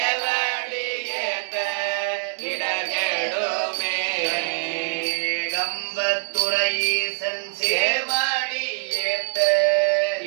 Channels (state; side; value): silent; left; digital silence